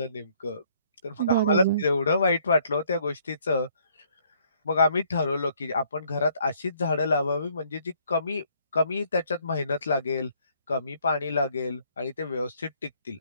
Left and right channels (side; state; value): both; inverted; correlation -0.65